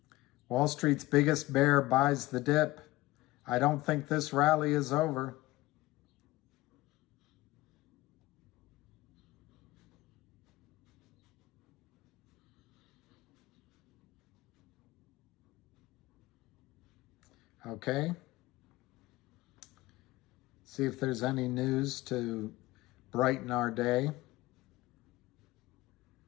Wall Street's biggest bear buys the dip. I don't think this rally is over. Okay. See if there's any news to brighten our day.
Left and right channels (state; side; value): quieter; right; 18.8 dB